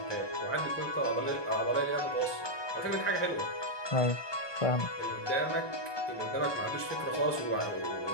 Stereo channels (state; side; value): late; right; 1.2 ms